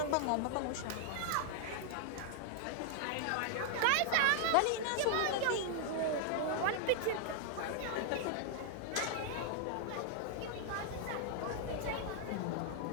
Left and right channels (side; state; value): both; different; correlation 0.00